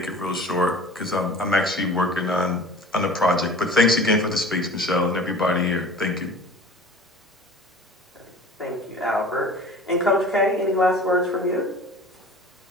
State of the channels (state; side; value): normal; both; correlation 0.42